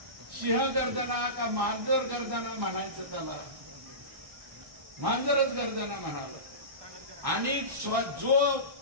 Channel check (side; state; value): left; late; 1.6 ms